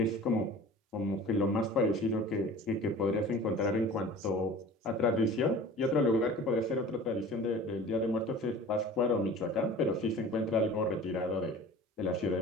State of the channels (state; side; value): normal; both; correlation 0.42